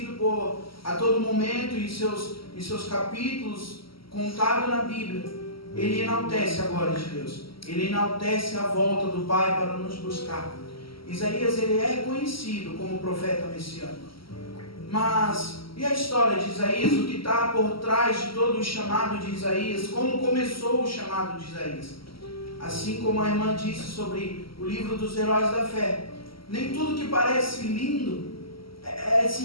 por a todo momento em seus capítulos contado na Bíblia, ele enaltece a glória de Deus, ele enaltece a volta do Pai para nos buscar. Isaías ele é conhecido como profeta messiânico. Mas e a história de Isaías? O que está por trás de todo o chamado de Isaías? Como começou o chamado de Isaías? Assim como a irmã disse sobre o livro dos heróis da fé, nem tudo que parece lindo é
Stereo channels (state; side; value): late; right; 0.75 ms